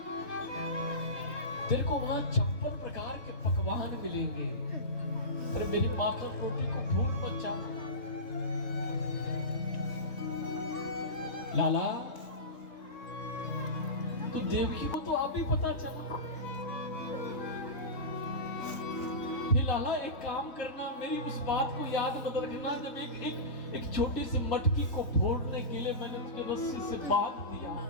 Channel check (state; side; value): late; right; 3.7 ms